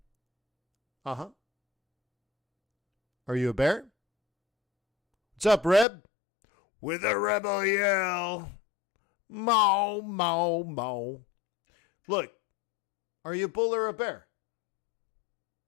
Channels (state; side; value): drops out; right; at 5.9 s